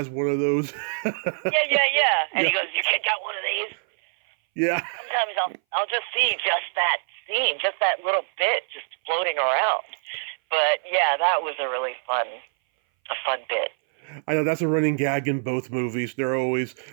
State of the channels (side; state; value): left; silent; 60 dB below the other